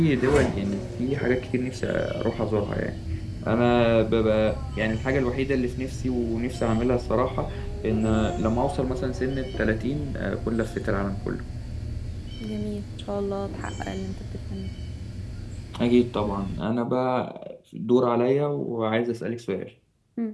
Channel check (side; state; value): both; identical; correlation 1.00